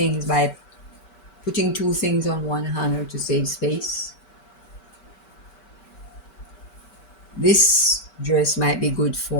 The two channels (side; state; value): right; late; 5.2 ms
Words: by putting two things on one hanger to save space. This dress might be good